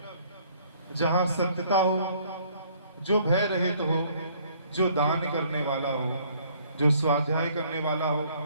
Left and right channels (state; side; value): inverted; both; correlation -0.61